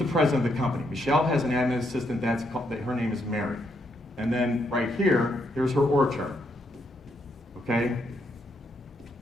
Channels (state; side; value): normal; both; correlation 0.77